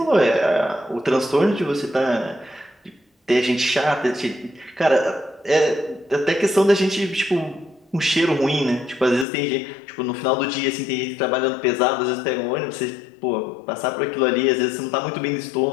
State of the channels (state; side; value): drops out; right; at 9.2 s